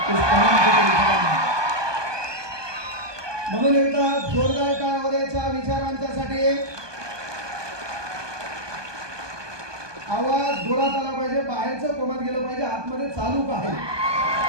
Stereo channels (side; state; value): left; late; 1.2 ms